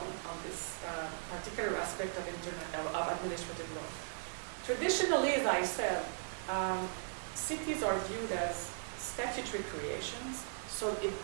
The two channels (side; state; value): left; silent; 52 dB below the other